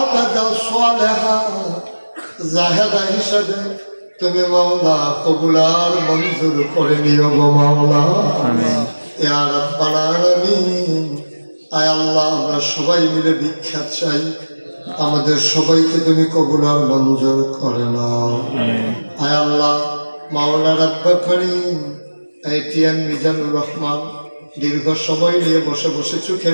সালেহা জাহেদা হিসাবে তুমি মাওলা কবুল আর মঞ্জুর করে নিও গো মাওলা। ইয়া রাব্বাল আলামিন। আয় আল্লাহ আমরা সবাই মিলে ভিক্ষা চাই, আমাদের সবাইকে তুমি কবুল আর মঞ্জুর করে নাও। আয় আল্লাহ মাওলা রব্বে করিম, এটিএম মিজানুর রহমান দীর্ঘ সময় নিয়ে বসে বসে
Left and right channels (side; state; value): both; inverted; correlation -1.00